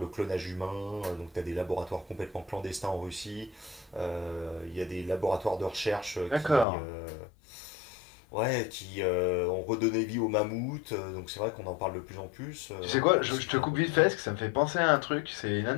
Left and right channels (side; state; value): right; drops out; at 6.7 s